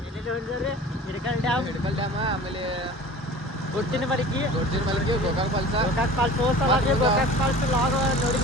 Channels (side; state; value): both; normal; correlation 0.41